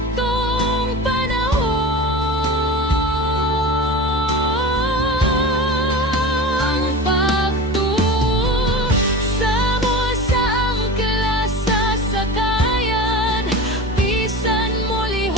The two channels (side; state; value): both; normal; correlation 0.31